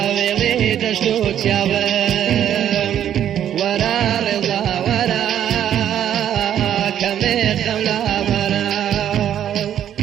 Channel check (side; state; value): left; quieter; 10.3 dB